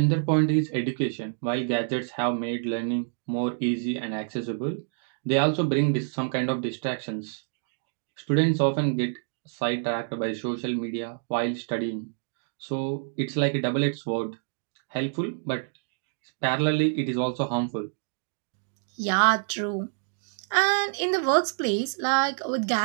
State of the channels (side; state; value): left; silent; digital silence